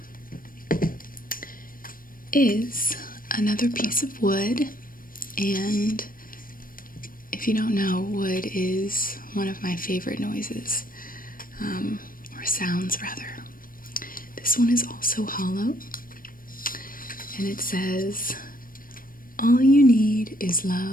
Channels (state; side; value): late; right; 0.41 ms